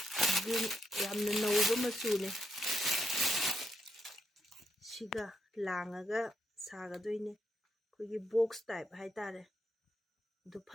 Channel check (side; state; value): both; normal; correlation 0.79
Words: green yamna nauba machune siga langaga sagadoine kogi box type hai tare du